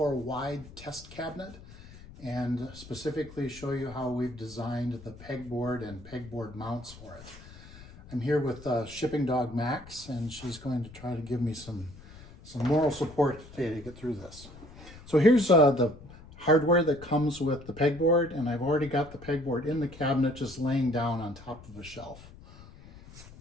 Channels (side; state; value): left; noise; rumble, 18 dB below the sound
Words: Wide test cabinet and specifically show you how we've designed the pegboard and pegboard mounts for it. I'm here with Shipping Dog Max, and she's going to try to give me some moral support today to get through this. So here's the hardware that comes with the pegboard, and I've already got the pegboard in the cabinet just laying down on top of a shelf.